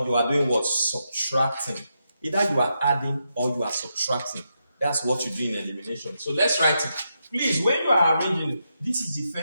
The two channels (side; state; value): both; inverted; correlation -0.84